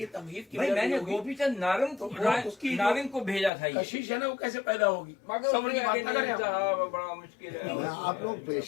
تمہید کی بھائی میں نے گوپی چند نارنگ کو بھیجا تھا، یہ کشش ہے نا وہ کیسے پیدا ہوگی؟ مگر صبر کی بات نہ کریں آپ۔ صاحب بڑا مشکل ہے۔ آپ لوگ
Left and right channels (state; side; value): drops out; right; at 3.5 s